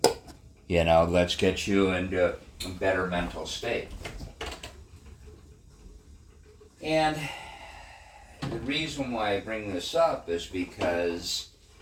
Let's get you into a better mental state. And the reason why I bring this up is because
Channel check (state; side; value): identical; both; correlation 1.00